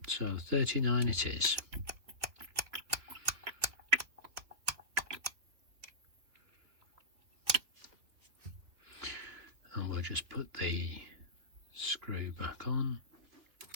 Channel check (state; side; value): late; left; 3.2 ms